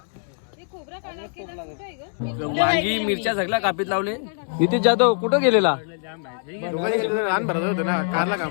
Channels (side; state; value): right; silent; 63 dB below the other